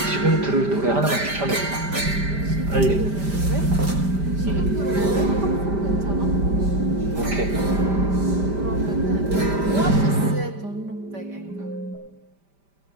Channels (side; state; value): left; late; 5.1 ms